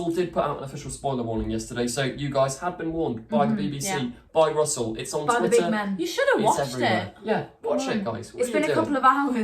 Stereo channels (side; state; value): both; identical; correlation 1.00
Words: did put out an official spoiler warning yesterday, so you guys had been warned by the BBC, by Russell. It's on by Twitter. The big men. You should have watched it. Yeah, watch it, guys. It's been a couple of